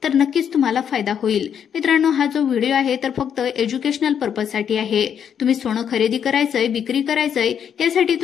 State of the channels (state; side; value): quieter; right; 8.3 dB